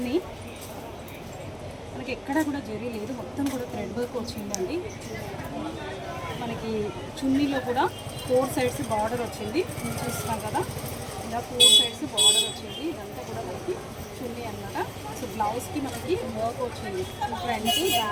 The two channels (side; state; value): both; identical; correlation 1.00